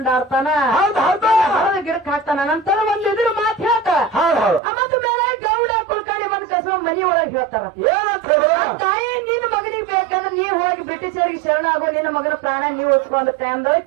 ಆಡ್ತಾನ ಹೌದ್ ಹೌದು ಹೊರದ ಗಿಡಕ್ ಹಾಕ್ತಾನ ನಂತರ ಒಂದ್ ಇದ್ರ ಮಾತು ಹೇಳ್ತ ಹೌದ್ ಹೌದು ಮತ್ತ ಮೇಲೆ ಗೌಡ ಕುಲ್ಕರ್ಣಿ ಬಂದ್ ಕಸ ಮನಿ ಒಳಗ್ ಹೇಳ್ತಾರ ಏನಂತ ಹೇಳಿದ್ರು ತಾಯಿ ನಿನ್ನ ಮಗನಿಗೆ ಬೇಕಂದ್ರೆ ನೀವ್ ಹೋಗಿ ಬ್ರಿಟಿಷರಿಗೆ ಶರಣ ಆಗೋ ನಿನ್ನ ಮಗನ ಪ್ರಾಣ ನೀವ್ ಉಳ್ಸ್ಕೊಂಡ ಟೈಮ್ದಾಗ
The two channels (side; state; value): left; drops out; at 4.6 s